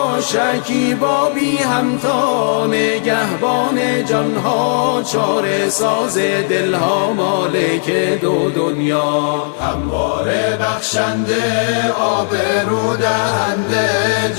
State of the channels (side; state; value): right; silent; 66 dB below the other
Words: شکیبا بی همتا، نگهبان جانها چاره ساز دلها، مالک دو دنیا، همواره بخشنده آبرو دهنده،